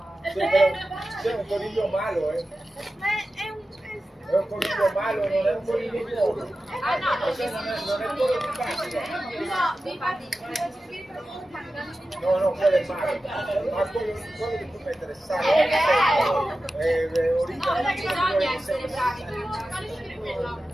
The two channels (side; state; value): both; normal; correlation 0.93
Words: C'è un coniglio malo, Ma è un È un coniglio malo, non è un coniglio buono. ah no, Non è quello di Pasqua. no, infatti No, quello è malo. Ma quello che tu mettere sale è originale. bisogna essere bravi